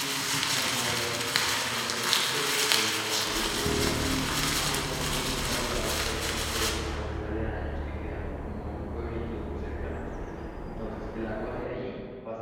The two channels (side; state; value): both; identical; correlation 1.00